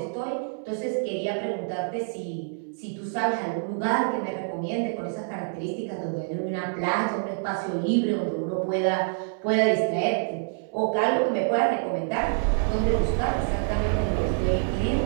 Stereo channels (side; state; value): left; silent; 60 dB below the other